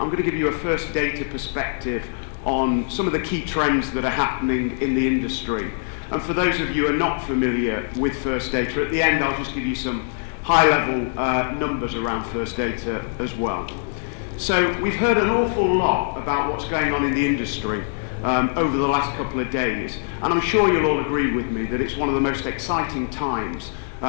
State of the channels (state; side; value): silent; right; digital silence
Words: I'm going to give you a First Data perspective on some of the key trends that are happening in the industry. And for those of you who are not familiar with First Data, at the end I'll just give you some high-level numbers around First Data as well. So we've heard an awful lot about what's going on in the industry over the last couple of days, and I'm sure you'll all agree with me that it's one of the most exciting times